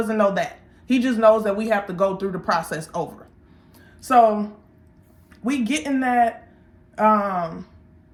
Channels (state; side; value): identical; both; correlation 1.00